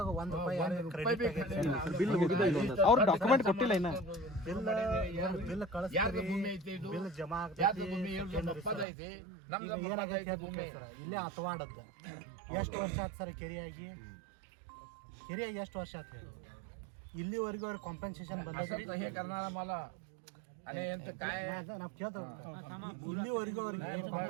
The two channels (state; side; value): drops out; left; at 8.8 s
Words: 1 ರೂಪಾಯಿ ಅವ್ರು ಡಾಕ್ಯುಮೆಂಟ್ ಕೊಟ್ಟಿಲ್ಲ ಇನ್ನ. ಬಿಲ್ ಯಾರ್ದು ಭೂಮಿ ಐತಿ ಇದು? ಬಿಲ್ ಜಮಾ ಯಾರ್ದು ಭೂಮಿ ಹೇಳ್ರಿ, ನಮ್ಮ ಅಪ್ಪದ ಐತಿ, ನಮ್ದು ಏನಾಗೈತೆ ಸರ್ ಇಲ್ಲೇ ಹತ್ವಾಡದ್ದ. ಎಷ್ಟು ವರ್ಷ ಆಯ್ತು ಸರ್ ಕೆರೆಯಾಗಿ ಎಷ್ಟು ವರ್ಷ ಆಯ್ತು ಹೇಳಿ? ಇಲ್ಲಿವರೆಗೂ ಅವ್ರಿಗೆ ಕಾಂಪನ್ಸೇಷನ್ ಬಂದೈತೆ हे करणारा मला आणि यांचं काय ನಾವು ಕೇಳ್ತೇವೆ. ಇಲ್ಲಿವರೆಗೂ ಅವ್ರಿಗೆ